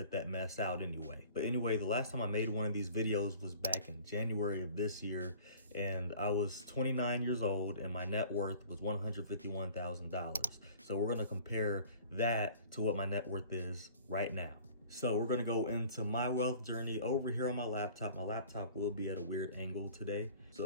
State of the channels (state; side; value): inverted; both; correlation -0.47